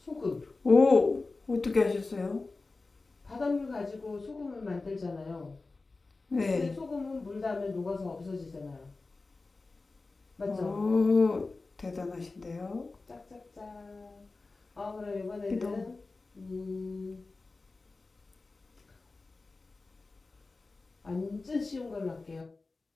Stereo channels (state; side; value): quieter; right; 3.6 dB